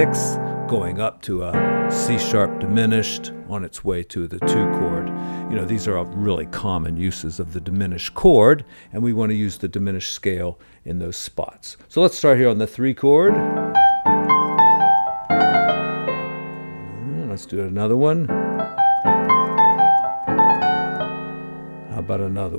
going up to a C sharp diminished on its way to the 2 chord. These are really common uses of the diminished chord, and we want to use the diminished scale in those spots. So let's start here on the 3 chord. Let's do another one. How about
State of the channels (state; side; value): inverted; both; correlation -1.00